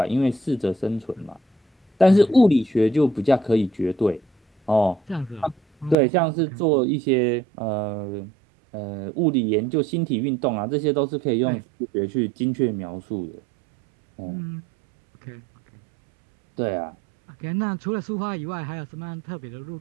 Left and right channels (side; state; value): left; drops out; at 6.0 s